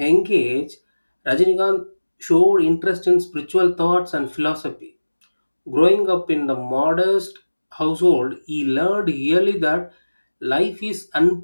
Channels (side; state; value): both; inverted; correlation -1.00